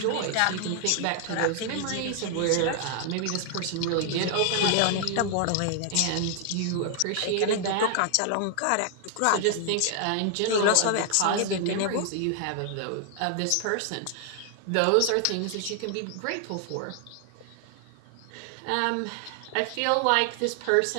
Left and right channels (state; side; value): different; both; correlation 0.00